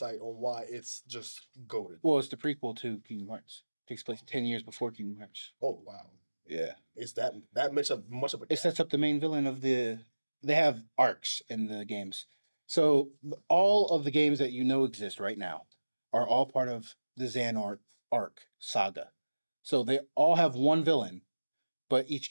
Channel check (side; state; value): both; inverted; correlation -1.00